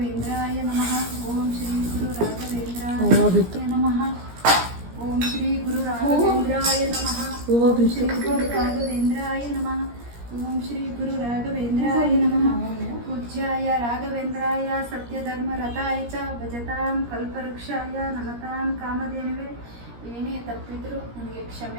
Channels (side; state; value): left; late; 17 ms